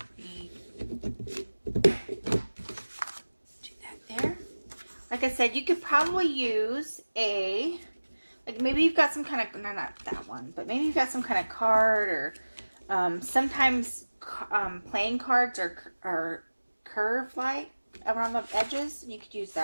Do that there. Like I said, you could probably use a, like maybe you've got some kind of, no, not that one, but maybe you've got some kind of card, or sometimes playing cards are curved like around the edges, and you could use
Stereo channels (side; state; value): both; inverted; correlation -1.00